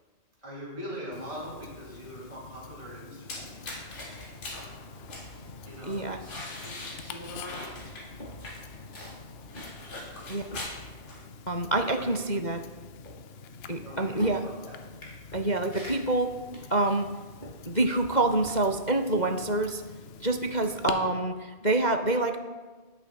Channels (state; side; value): late; right; 2.1 ms